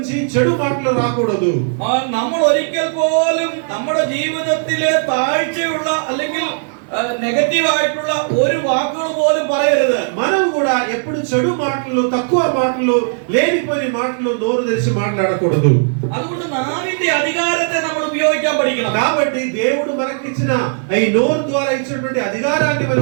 చెడు మాటలు రాకూడదు. നമ്മൾ ഒരിക്കൽ പോലും നമ്മുടെ ജീവിതത്തിലെ താഴ്ചയുള്ള അല്ലെങ്കിൽ നെഗറ്റീവ് ആയിട്ടുള്ള ഒരു വാക്കുകൾ പോലും പറയരുത്. మనం కూడా ఎప్పుడు చెడు మాటలు, తక్కువ మాటలు, లేనిపోని మాటలు నోరు తెరిచి మాట్లాడకూడదు. അതുകൊണ്ട് നാവിന്റെ അധികാരത്തെ നമ്മൾ ഉപയോഗിക്കാൻ പഠിക്കണം. కాబట్టి దేవుడు మనకిచ్చిన ఈ నోరు ద్వారా ఇచ్చినటువంటి అధికారాన్ని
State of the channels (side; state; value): left; silent; 56 dB below the other